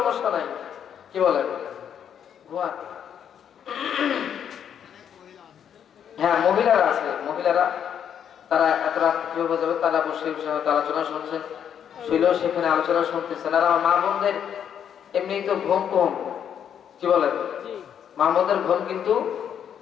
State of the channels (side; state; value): right; quieter; 8.7 dB